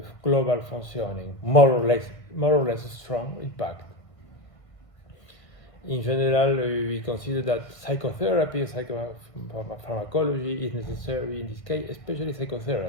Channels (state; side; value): late; right; 1.5 ms